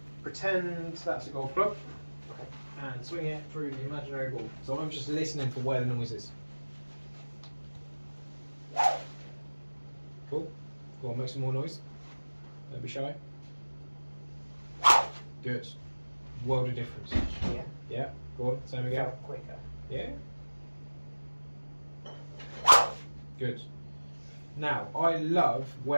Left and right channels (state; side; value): inverted; both; correlation -1.00